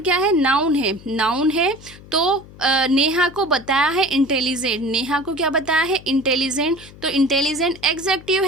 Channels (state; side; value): noise; left; hum, 20 dB below the sound